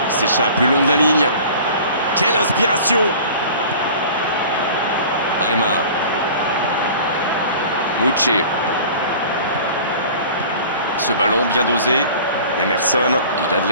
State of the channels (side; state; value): both; inverted; correlation -0.43